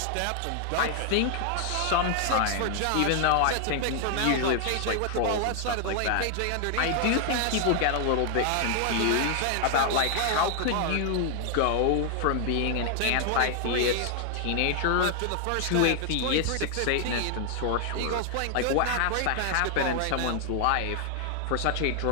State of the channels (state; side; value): different; both; correlation 0.00